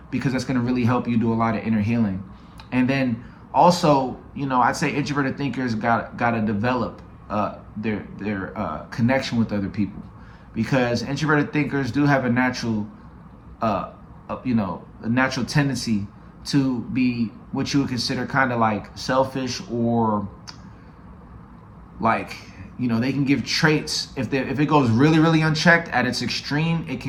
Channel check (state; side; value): identical; both; correlation 1.00